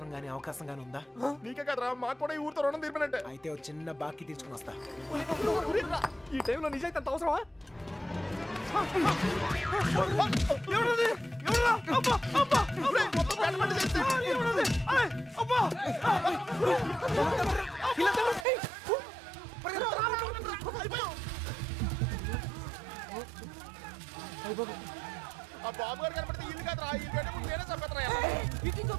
గానీ అవకాశం గానీ ఉందా? నీకే కదరా, మాకు కూడా ఈ ఊరితో రుణం తీర్పినట్టే. అయితే ఒక చిన్న బాకీ తీసుకుని వస్తా. ఈ టైంలో నిజాయితీ అంత అవసరమా? ఆ బాబు గారు కనపడితే ఇల్లు కాదురా, ఇల్లు కంటే ముందు నేనే చంపేస్తారా.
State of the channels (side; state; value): left; drops out; at 18.4 s